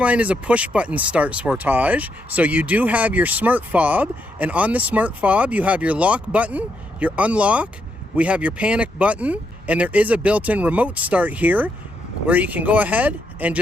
is a push-button start Sportage, so you do have your smart fob, and on the smart fob you have your lock button, your unlock, we have your panic button, and there is a built-in remote start here where you can go ahead and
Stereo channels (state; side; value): normal; both; correlation 0.79